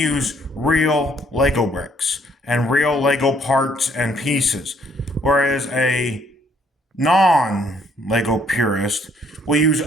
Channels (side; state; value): both; normal; correlation 0.66